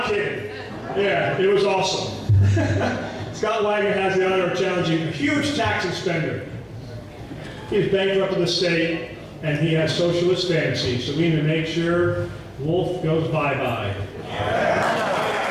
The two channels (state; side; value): identical; both; correlation 1.00